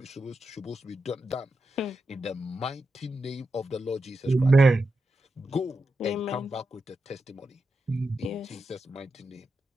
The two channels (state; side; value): normal; both; correlation 0.88